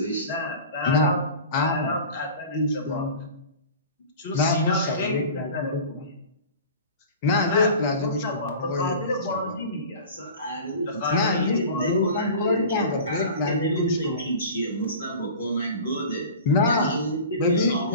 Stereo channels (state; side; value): inverted; both; correlation -0.38